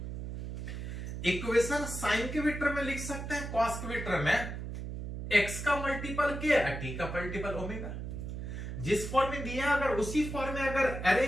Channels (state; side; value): noise; right; hum, 6 dB below the sound